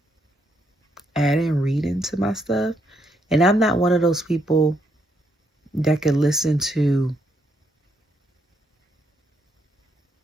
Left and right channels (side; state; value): both; normal; correlation 0.75